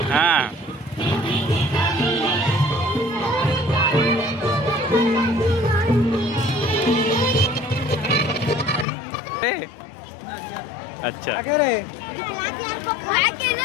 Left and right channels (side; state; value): right; drops out; at 8.8 s